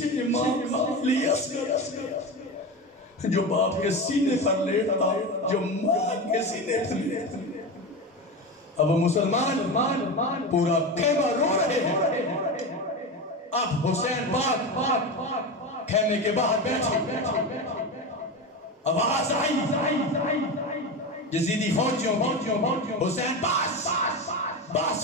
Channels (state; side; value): normal; both; correlation 0.22